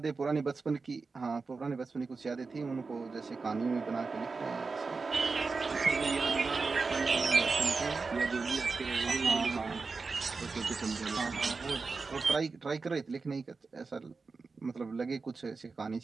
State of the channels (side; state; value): left; quieter; 4.3 dB